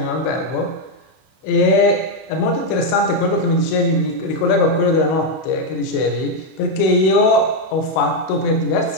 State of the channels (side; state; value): right; late; 31 ms